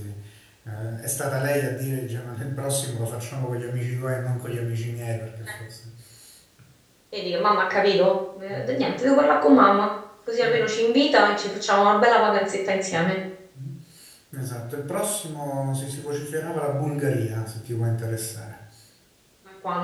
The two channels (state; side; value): identical; both; correlation 1.00